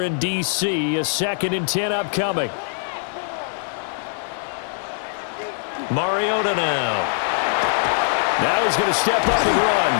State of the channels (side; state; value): right; silent; digital silence